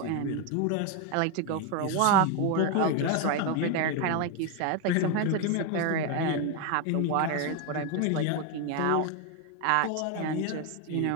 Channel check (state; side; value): different; both; correlation 0.01